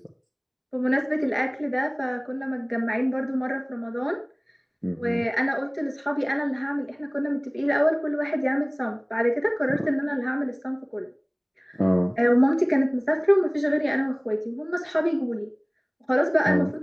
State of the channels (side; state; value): both; identical; correlation 1.00